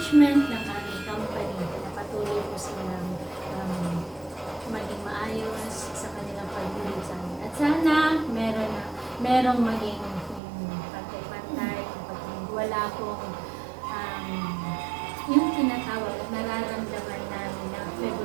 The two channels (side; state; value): left; drops out; at 10.4 s